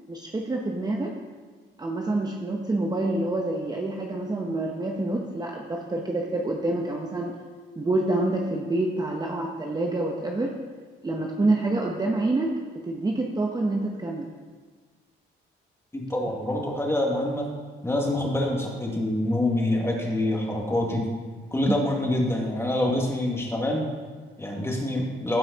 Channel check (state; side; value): normal; both; correlation 0.76